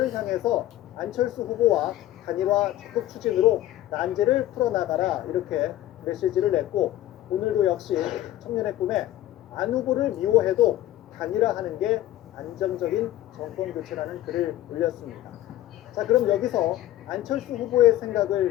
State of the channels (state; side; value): quieter; right; 14.1 dB